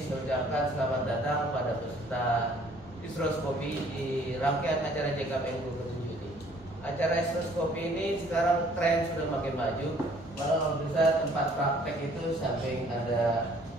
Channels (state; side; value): normal; both; correlation 0.58